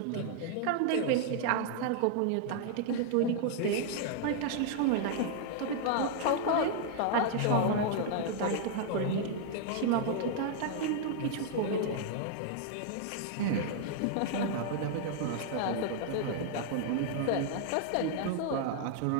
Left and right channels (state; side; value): different; both; correlation 0.00